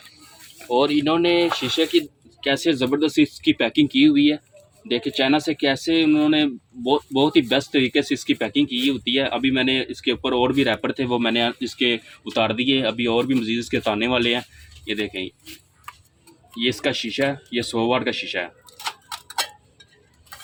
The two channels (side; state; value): both; identical; correlation 1.00